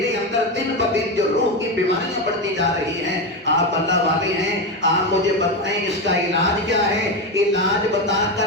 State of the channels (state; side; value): normal; both; correlation 0.14